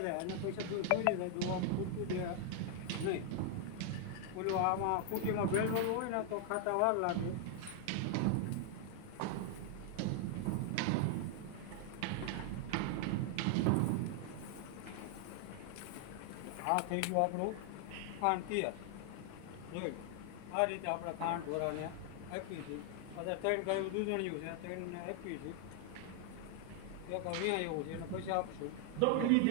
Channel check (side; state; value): both; different; correlation 0.00